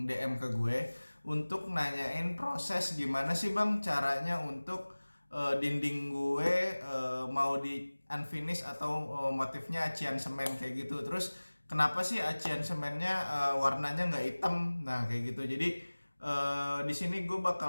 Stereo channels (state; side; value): inverted; both; correlation -1.00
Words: DM ke gue untuk nanyain proses gimana sih bang caranya untuk dinding gue mau di unfinish atau motifnya acian semen kayak gitu. Terus kenapa sih acian semennya warnanya nggak hitam? Nah kayak gitu. Jadi di sini gue